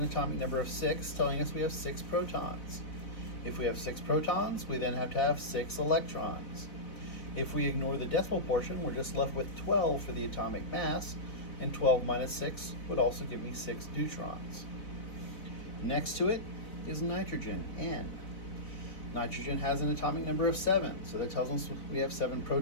atomic number of 6, telling us we have 6 protons. If we have 6 protons, we then have to have 6 electrons. If we ignore the decimal portion, we're just left with 12 for the atomic mass, and 12 minus 6 would also give me 6 neutrons. Next to it is nitrogen, N. Nitrogen has an atomic number of 7, so that tells us we have 7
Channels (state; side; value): late; right; 4.0 ms